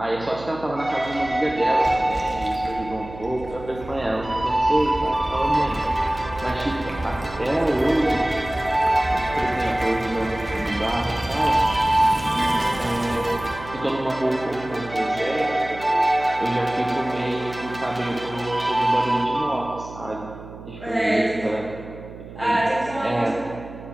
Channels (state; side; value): noise; right; hum, 15 dB below the sound